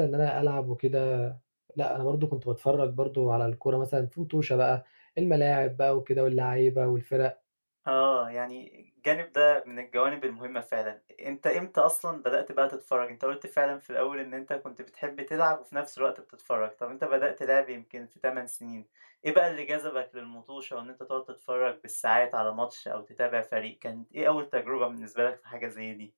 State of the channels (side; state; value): both; inverted; correlation -1.00